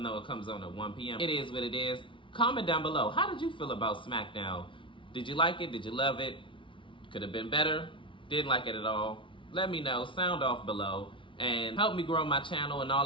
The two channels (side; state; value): right; late; 0.25 ms